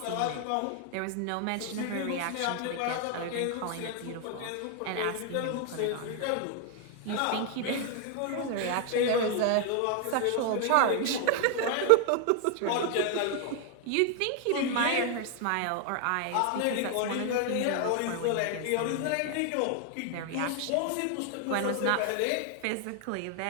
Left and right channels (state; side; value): different; both; correlation 0.00